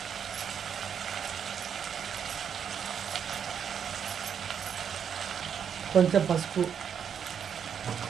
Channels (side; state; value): left; quieter; 7.8 dB